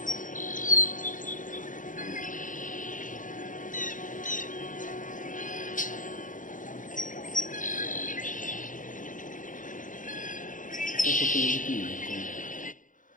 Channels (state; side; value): late; right; 0.38 ms